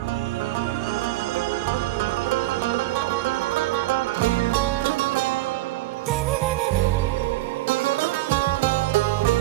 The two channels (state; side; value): quieter; left; 17.5 dB